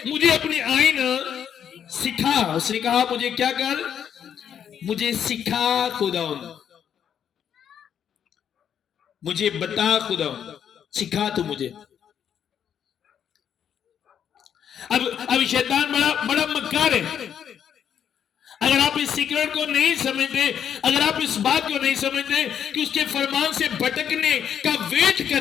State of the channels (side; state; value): right; quieter; 8.7 dB